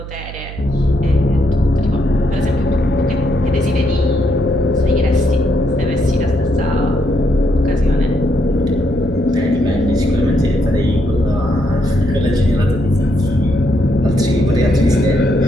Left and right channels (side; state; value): right; noise; hum, 12 dB below the sound